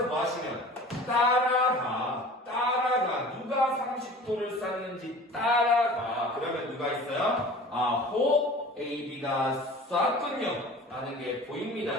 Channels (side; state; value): both; normal; correlation 0.42